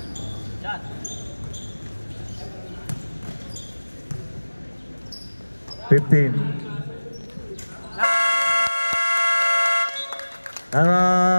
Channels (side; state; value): both; inverted; correlation -1.00